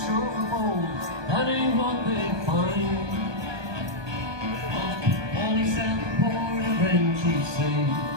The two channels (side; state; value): left; late; 1.2 ms